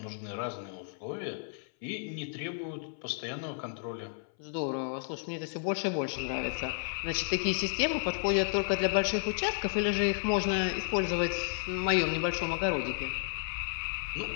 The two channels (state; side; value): silent; right; 56 dB below the other